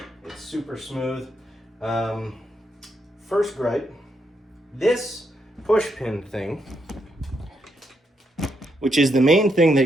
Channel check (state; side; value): normal; both; correlation 0.80